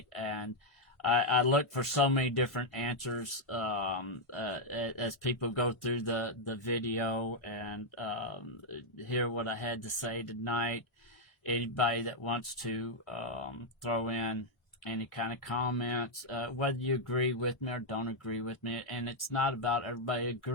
And I look for so many different answers as people go through the video and hear what I had to say tonight. Anybody that wants to throw in any kind of comments, whether you agree with me or don't agree with me, and it's not about everybody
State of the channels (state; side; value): normal; both; correlation 0.00